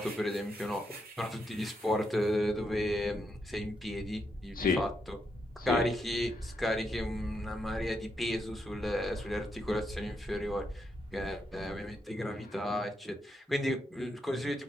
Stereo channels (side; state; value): both; normal; correlation 0.81